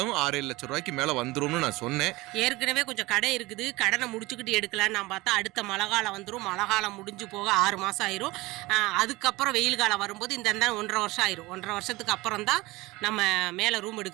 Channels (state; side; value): quieter; left; 20.9 dB